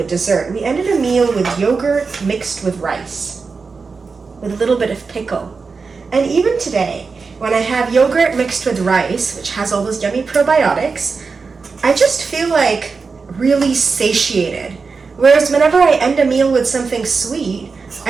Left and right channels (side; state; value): left; quieter; 4.7 dB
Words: dessert. We ended a meal with yogurt mixed with rice, with a little bit of pickle. And even today, when I have yogurt mixed with rice, which has all those yummy probiotics, I just feel like really satiated. Whereas whenever I end a meal with something sweet,